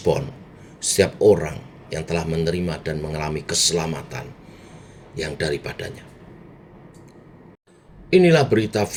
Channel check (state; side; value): identical; both; correlation 1.00